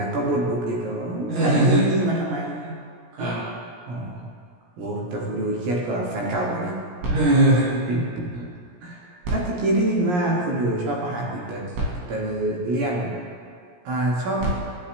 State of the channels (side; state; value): left; late; 17 ms